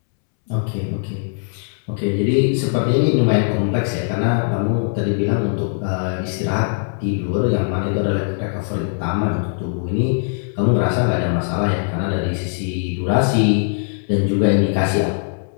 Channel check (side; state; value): right; silent; 66 dB below the other